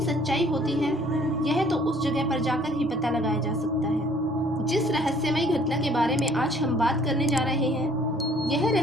सच्चाई होती है यह तो उस जगह पर जाकर ही पता लगाया जा सकता है। जिस रहस्यमयी घटना के बारे में आज हम बात करने जा रहे हैं यह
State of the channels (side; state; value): both; normal; correlation 0.58